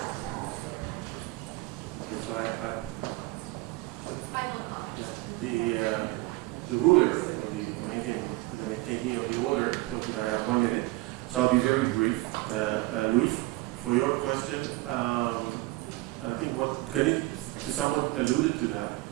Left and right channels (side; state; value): left; quieter; 20.9 dB